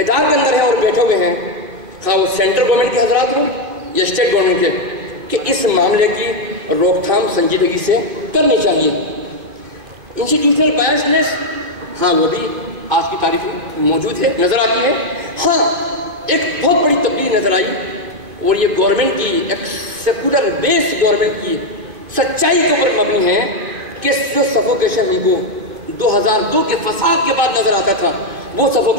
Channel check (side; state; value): left; late; 2.5 ms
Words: کے اندر ہیں اور بیٹھے ہوئے ہیں، خواہ وہ سینٹرل گورنمنٹ کے حضرات ہوں یا اسٹیٹ گورنمنٹ کے، کہ اس معاملے کی روک تھام سنجیدگی سے کرنی چاہیے۔ انسٹیٹیوشنل بائسنس، ہاں وہ بھی آج کی تاریخ میں موجود ہے، نظر آتی ہے۔ ہاں ایک بہت بڑی تبدیلی نظر آئی، اور یہ گورنمنٹ کی ایک سیکولر بیس گورنمنٹ کی سچائی کے اوپر مبنی ہے کہ جو سفوکیشن ہم کو 2002 کے فساد کے بعد نظر آتا تھا، وہ